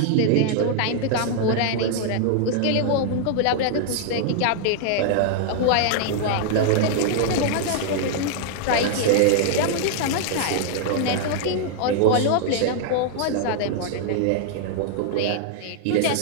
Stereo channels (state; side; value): different; both; correlation -0.01